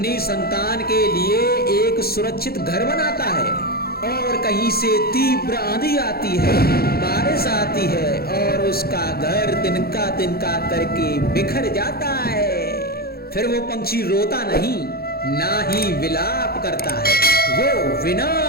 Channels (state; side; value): late; right; 0.45 ms